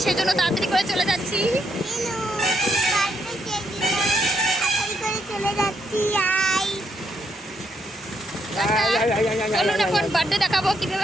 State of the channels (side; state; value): both; normal; correlation 0.76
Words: সেজন্য তাড়াতাড়ি করে চলে যাচ্ছি। চলে যাচ্ছি। চলুন এখন বার্থডে দেখাবো